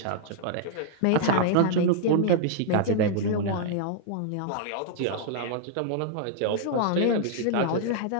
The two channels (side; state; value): both; different; correlation -0.01